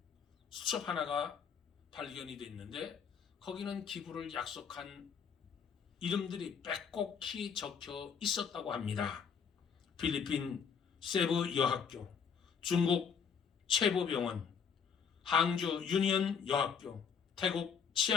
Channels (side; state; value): right; quieter; 6.6 dB